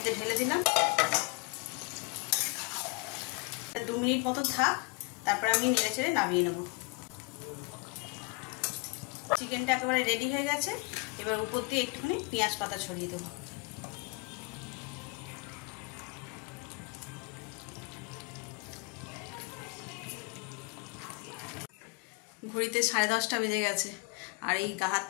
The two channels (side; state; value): right; quieter; 29.0 dB